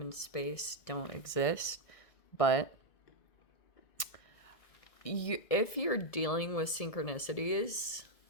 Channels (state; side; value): late; right; 1.7 ms